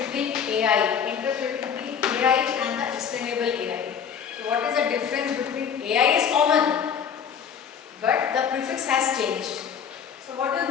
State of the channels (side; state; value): right; quieter; 7.5 dB